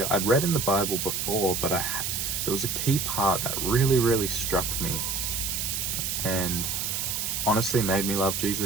I'd read in the Bible before, but there was a key part that really struck me and honestly made me love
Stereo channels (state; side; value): noise; right; hiss, 1 dB below the sound